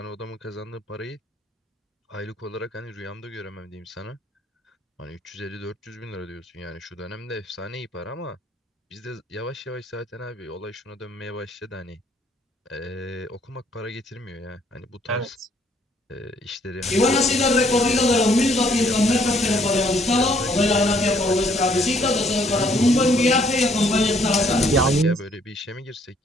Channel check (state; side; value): normal; both; correlation 0.65